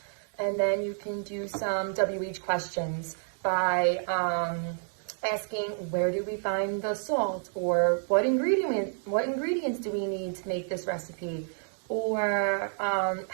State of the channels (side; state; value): left; silent; digital silence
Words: And then you can do some WH questions by asking, where do we find the salt, or what ingredients do we need to make this recipe, or